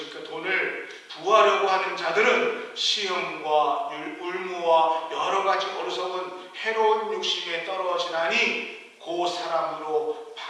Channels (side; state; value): both; identical; correlation 1.00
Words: 돈을 부하려고 하는 자들은 시험과 울무와 여러 가지 어리석은 해로운 욕심에 떨어지나니 그 사람으로